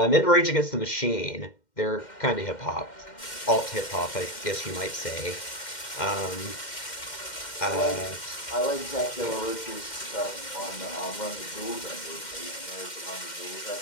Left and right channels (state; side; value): late; right; 2.1 ms